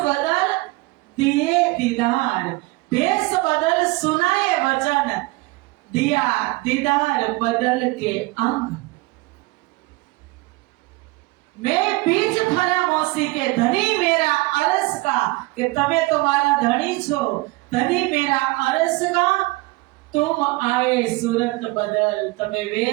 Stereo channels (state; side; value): quieter; left; 22.5 dB